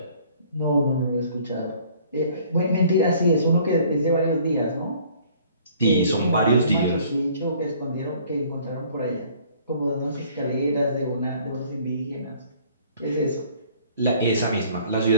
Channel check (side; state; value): both; inverted; correlation -0.56